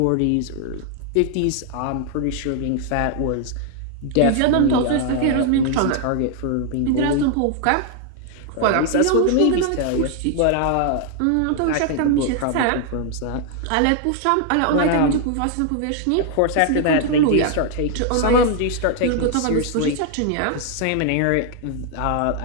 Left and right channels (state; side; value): different; both; correlation 0.00